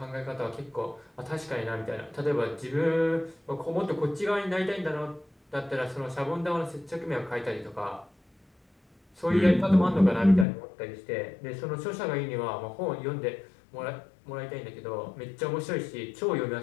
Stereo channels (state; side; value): drops out; right; at 10.5 s